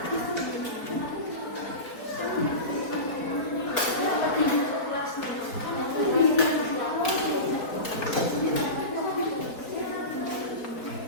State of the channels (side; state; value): right; late; 4.3 ms